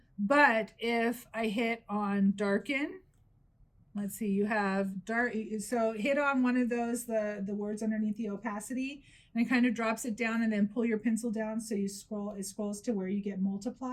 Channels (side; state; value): both; identical; correlation 1.00